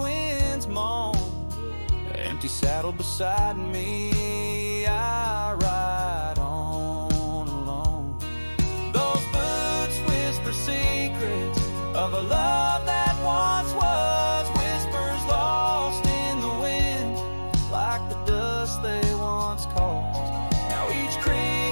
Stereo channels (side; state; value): both; inverted; correlation -1.00